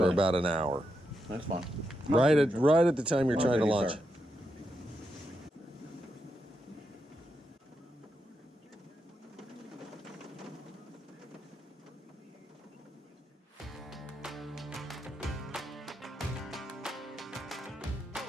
about an hour. That's fine. Right at the time you're trying to launch. Sir.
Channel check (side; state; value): both; normal; correlation 0.84